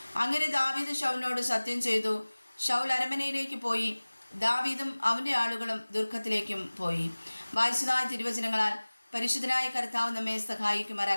അങ്ങനെ ദാവീദ് ശൗലിനോട് സത്യം ചെയ്തു. ശൗൽ അരമനയിലേക്ക് പോയി. ദാവീദും അവൻ്റെ ആളുകളും ദുർഘത്തിലേക്കും പോയി. വായിച്ചതായ തിരുവചനങ്ങളാൽ പരിശുദ്ധനായ കർത്താവ് നമ്മെ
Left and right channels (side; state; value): both; inverted; correlation -1.00